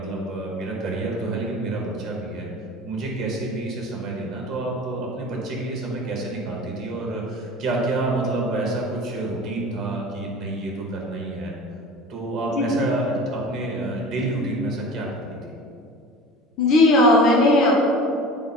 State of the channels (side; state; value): both; normal; correlation 0.38